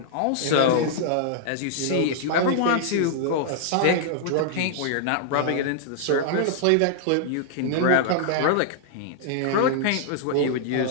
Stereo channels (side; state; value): both; different; correlation -0.01